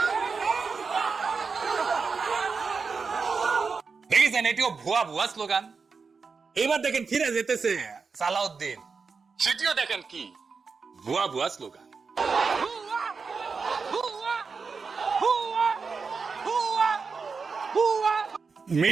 দেখেছেন এটিও ভুয়া স্লোগান। এবার দেখেন ফিরে যেতেছে সালাউদ্দিন, সেটিও দেখেন কি ভুয়া স্লোগান।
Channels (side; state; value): left; quieter; 5.0 dB